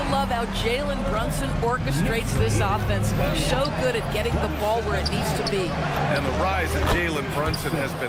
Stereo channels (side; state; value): both; identical; correlation 1.00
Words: love how Jalen Brunson orchestrates this offense. So good at getting the ball where it needs to be. And the rise of Jalen Brunson has